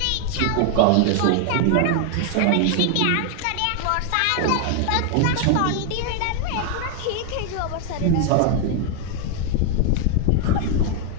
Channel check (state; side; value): different; both; correlation 0.00